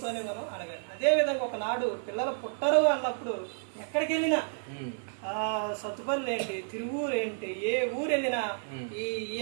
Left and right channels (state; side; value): silent; left; 57 dB below the other